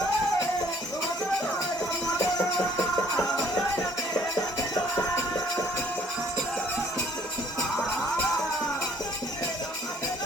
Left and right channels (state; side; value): normal; both; correlation 0.59